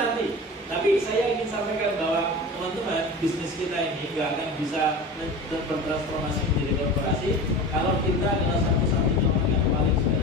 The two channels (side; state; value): both; normal; correlation 0.32